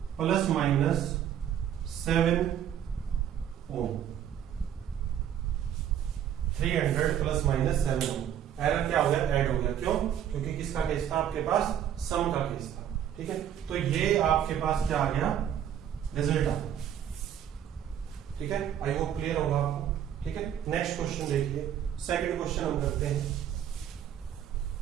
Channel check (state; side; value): quieter; left; 9.9 dB